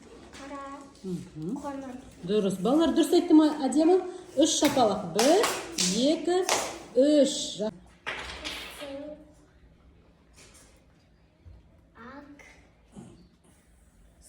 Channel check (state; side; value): identical; both; correlation 1.00